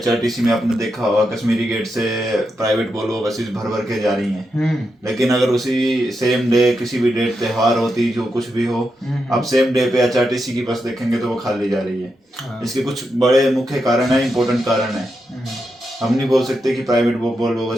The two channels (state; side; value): normal; both; correlation 0.85